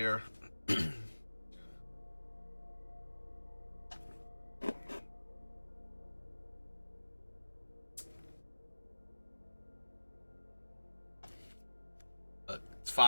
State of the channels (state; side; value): inverted; both; correlation -1.00